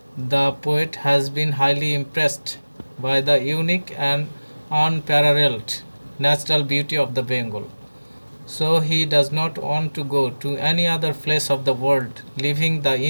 The poet has been highly impressed by the unique and unparalleled natural beauty of the Bengal. So he does not want to go to any other place of the world, leaving the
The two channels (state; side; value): inverted; both; correlation -1.00